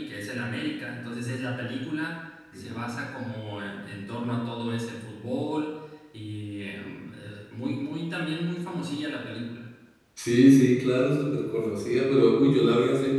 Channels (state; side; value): identical; both; correlation 1.00